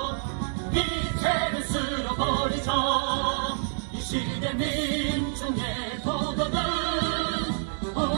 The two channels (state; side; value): silent; left; digital silence